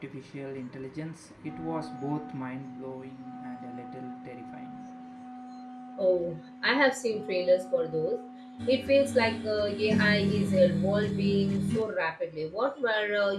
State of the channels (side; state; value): both; identical; correlation 1.00